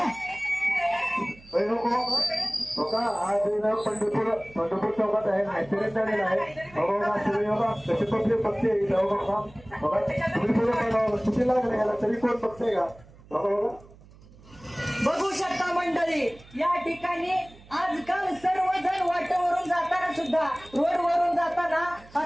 आज पंढरपूर चौकात आहे, ऍक्सिडेंट झालेला आहे. बघा कसे पब्लिक बघते बघा, तुम्ही पुढे चुकी लागले याला तरी कोण बघते का? बघा बघा बघू शकता मंडळी, या ठिकाणी आजकाल सर्वजण वाटेवरून जाताना सुद्धा, रोडवरून जाताना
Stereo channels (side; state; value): right; noise; hum, 23 dB below the sound